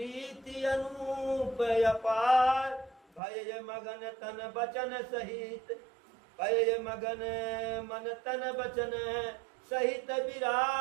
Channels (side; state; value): left; drops out; at 3.2 s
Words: अनूप अपार। भय मगन तन बचन सहित, भय मगन मन तन बचन सहित